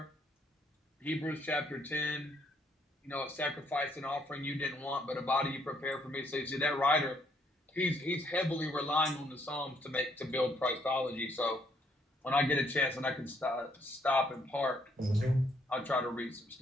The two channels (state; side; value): normal; both; correlation 0.70